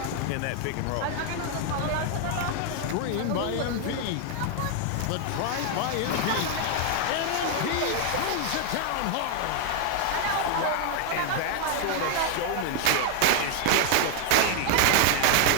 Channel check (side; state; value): both; different; correlation 0.00